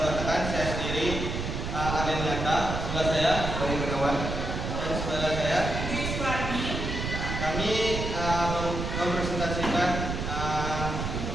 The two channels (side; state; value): right; noise; rumble, 3 dB below the sound